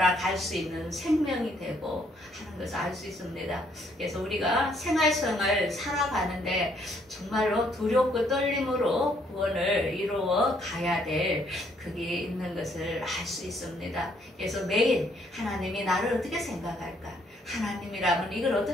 갈 수 있는 생명이 되고 하는 것을 알 수 있습니다. 그래서 우리가 생활성을 살아가는데 정말로 두렵고 떨림으로 구원을 이루어 가야 될 그게 있는 것을 알 수 있습니다. 그래서 매일 하나님이 나를 어떻게 생각할까? 하나님이라면 이걸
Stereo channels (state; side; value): normal; both; correlation 0.68